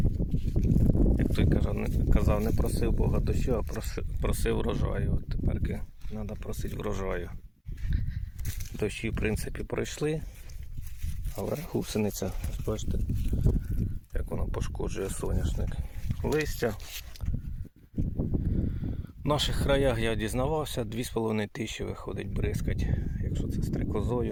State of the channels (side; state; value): both; identical; correlation 1.00